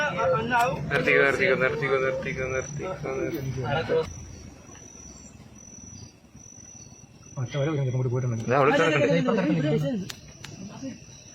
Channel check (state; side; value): identical; both; correlation 1.00